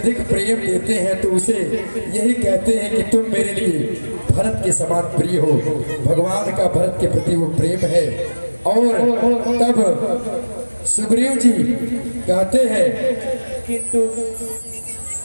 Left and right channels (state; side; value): inverted; both; correlation -1.00